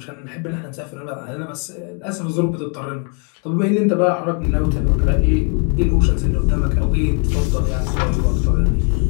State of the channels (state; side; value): quieter; right; 39.3 dB